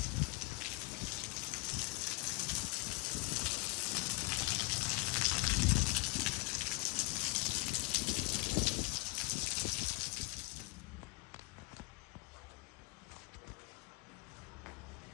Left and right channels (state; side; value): quieter; right; 25.0 dB